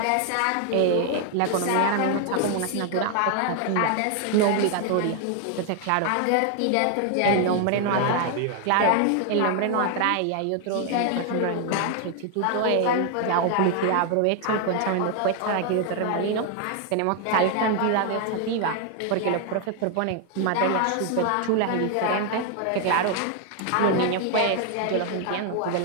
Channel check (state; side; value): different; both; correlation 0.00